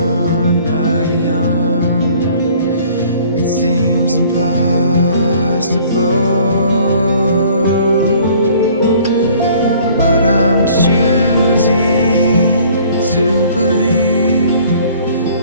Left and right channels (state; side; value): inverted; both; correlation -0.55